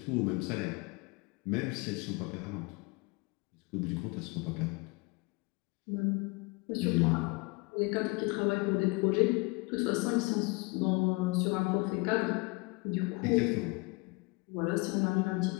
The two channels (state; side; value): quieter; right; 27.2 dB